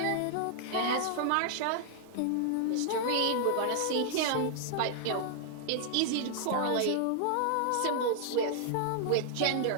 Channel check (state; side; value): different; both; correlation 0.00